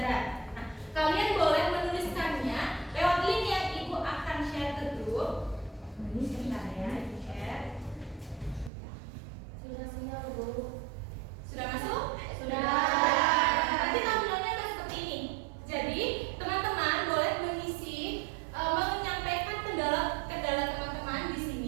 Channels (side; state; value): left; drops out; at 8.7 s